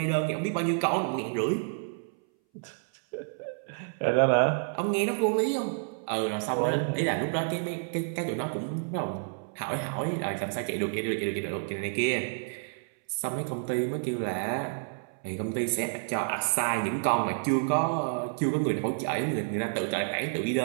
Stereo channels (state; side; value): silent; left; 58 dB below the other